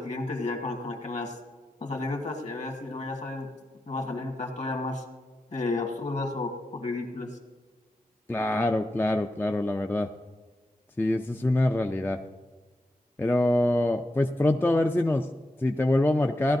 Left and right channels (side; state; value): both; normal; correlation 0.88